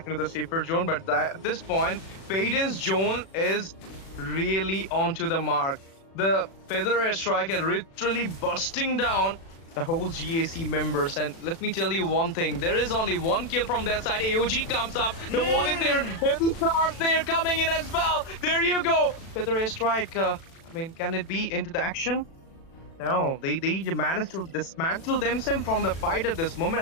into the safer zone, but at this point, Faden's zone is really onto the mark. The Feather Strike is literally busting down the whole GAC members. And let me tell you one thing, there is only one kill from their side. AOG comes up. The wall is there. Heavy stars there coming in as well. There you go. Feather Strike. Can it be into the action? No, they managed to dismantle themselves from the fight at this moment.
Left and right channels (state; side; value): late; right; 36 ms